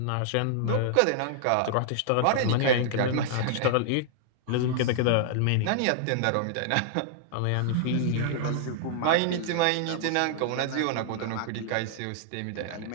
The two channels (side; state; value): both; different; correlation -0.01